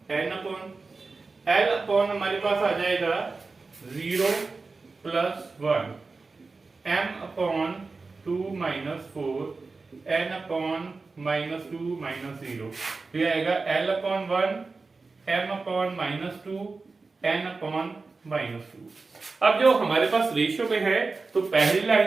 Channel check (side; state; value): left; quieter; 4.0 dB